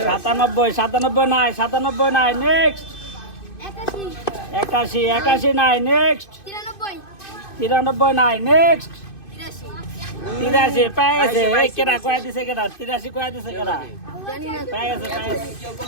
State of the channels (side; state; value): right; late; 2.5 ms